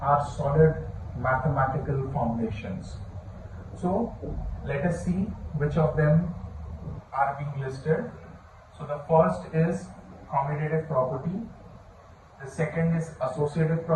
solid mathematical foundations. So let us see which of them are being listed. So the first is commutative property, the second is associative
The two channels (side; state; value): both; identical; correlation 1.00